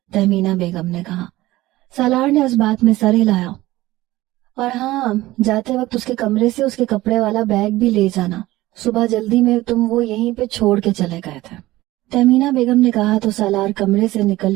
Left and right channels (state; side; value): quieter; left; 17.5 dB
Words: تہمینہ بیگم نے کہا۔ سالار نے اس بات میں سر ہلایا۔ اور ہاں، جاتے وقت اس کے کمرے سے اس کے کپڑے والا بیگ بھی لے جانا، صبح جلدی میں تم وہ یہیں پہ چھوڑ کے چلے گئے تھے، تہمینہ بیگم نے کہا تو سالار کمرے سے نکل